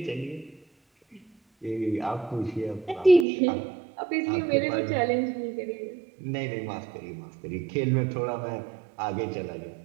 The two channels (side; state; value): left; drops out; at 3.2 s